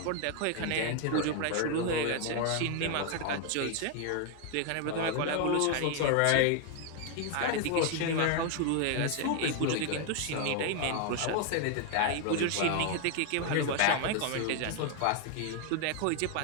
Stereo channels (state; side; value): different; both; correlation 0.01